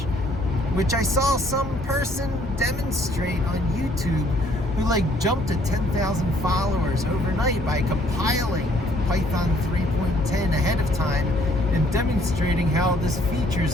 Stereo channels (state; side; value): normal; both; correlation 0.63